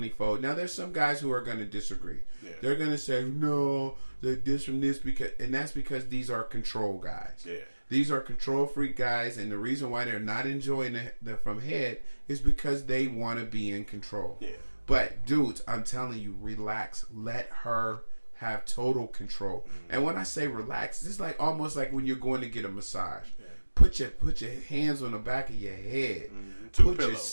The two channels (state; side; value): inverted; both; correlation -1.00